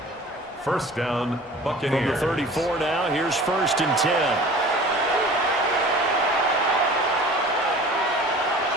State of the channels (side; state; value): both; normal; correlation 0.43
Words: 1st down, Buccaneers. From the 34 now, here's 1st and 10.